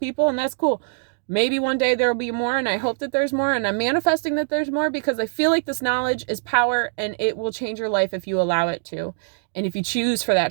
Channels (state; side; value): silent; left; digital silence